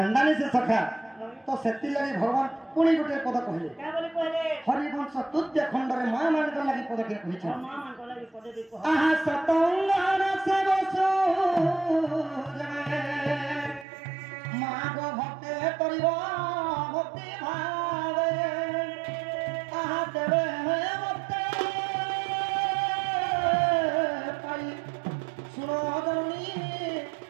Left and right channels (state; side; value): drops out; left; at 13.9 s